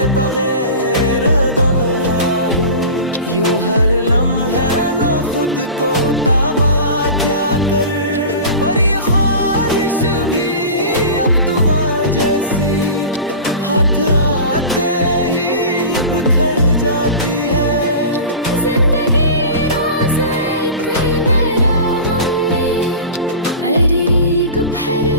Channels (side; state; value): both; inverted; correlation -0.34